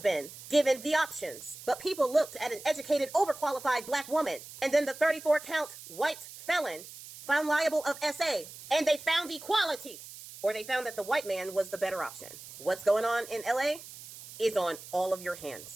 been given the options. But people looked at an educated, overqualified black woman and then the 34-count white felon found liable of SA. And they found equality. Or they found that the white man was the better option. What's going on in LA is on all of your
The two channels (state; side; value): noise; right; hiss, 15 dB below the sound